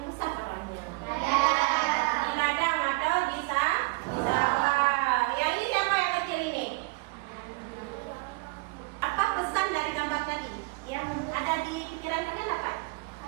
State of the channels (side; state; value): left; quieter; 26.2 dB